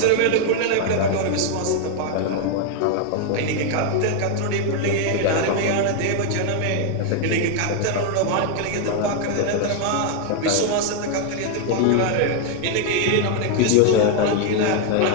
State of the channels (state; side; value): different; both; correlation 0.00